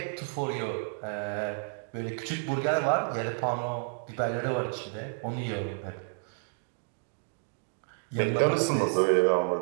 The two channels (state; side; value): silent; left; 57 dB below the other